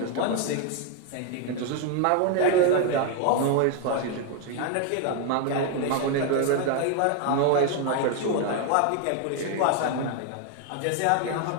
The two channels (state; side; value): different; both; correlation 0.01